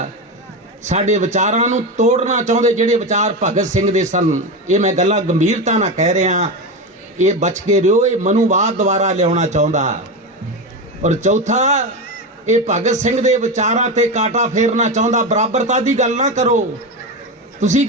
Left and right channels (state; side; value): normal; both; correlation 0.17